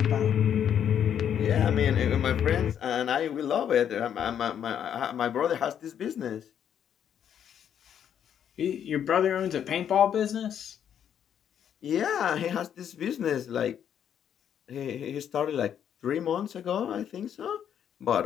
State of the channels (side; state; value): right; quieter; 9.1 dB